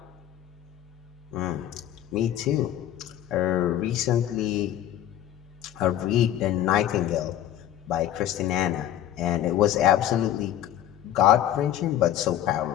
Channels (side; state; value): right; quieter; 11.8 dB